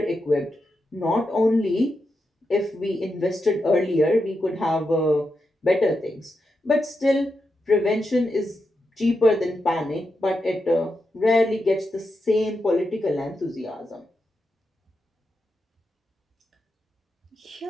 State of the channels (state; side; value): normal; both; correlation 0.86